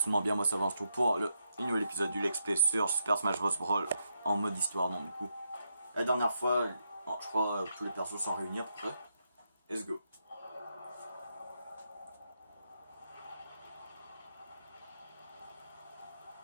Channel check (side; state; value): both; inverted; correlation -0.81